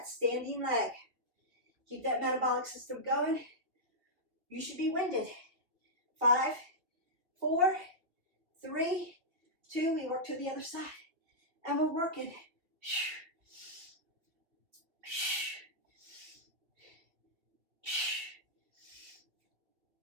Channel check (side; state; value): left; late; 2.8 ms